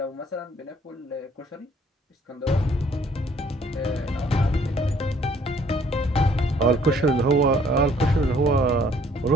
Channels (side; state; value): both; normal; correlation 0.61